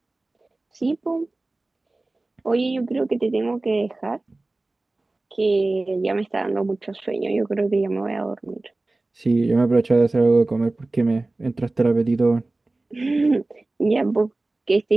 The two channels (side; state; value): left; quieter; 3.0 dB